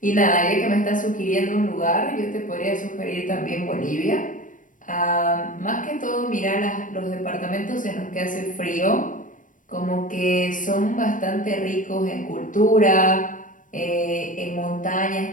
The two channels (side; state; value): right; late; 0.38 ms